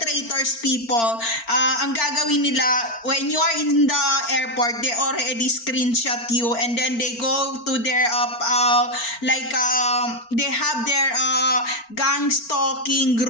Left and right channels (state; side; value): late; right; 4.4 ms